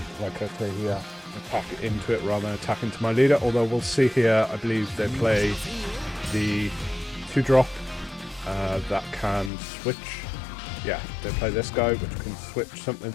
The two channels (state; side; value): drops out; right; at 9.5 s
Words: like I say here, attack into it rather than attack into my leader. Although we'll see here, I believe they play the 2-drop that can switch. Yeah, they play this guy, which can switch something